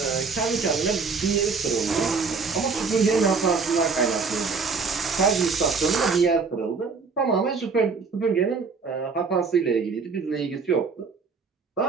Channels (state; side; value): quieter; left; 4.9 dB